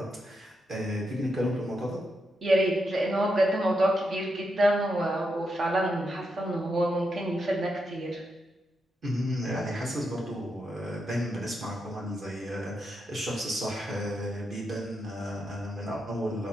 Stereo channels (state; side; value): normal; both; correlation 0.84